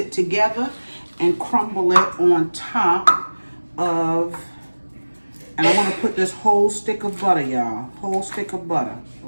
together and crumble it on top of, and I want to put this whole stick of butter, y'all. Whole stick of butter,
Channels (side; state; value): both; inverted; correlation -1.00